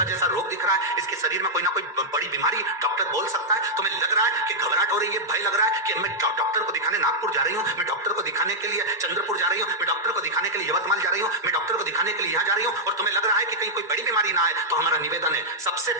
जैसा रोग दिख रहा है, इसके शरीर में कोई ना कोई बड़ी बीमारी डॉक्टर बोल सकता है, तुम्हें लग रहा है कि घबराहट हो रही है, भय लग रहा है कि मैं डॉक्टर को दिखाने नागपुर जा रही हूँ, मैं डॉक्टर को दिखाने के लिए चंद्रपुर जा रही हूँ, मैं डॉक्टर को दिखाने के लिए यवतमाल जा रही हूँ, मैं डॉक्टर को दिखाने के लिए यहाँ जा रही हूँ, और तुम्हें लग रहा है कि कहीं कोई बड़ी बीमारी ना आए, तो हमारा निवेदन है, सबसे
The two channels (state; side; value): normal; both; correlation -0.06